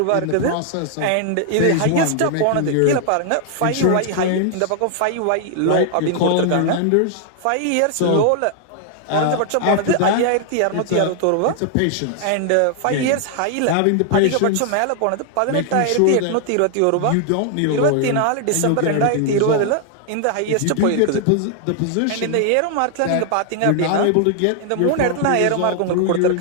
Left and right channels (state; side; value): different; both; correlation 0.00